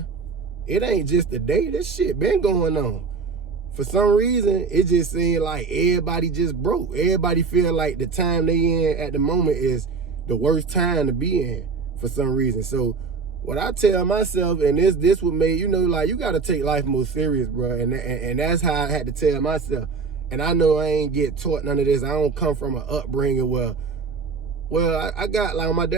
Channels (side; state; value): left; quieter; 4.7 dB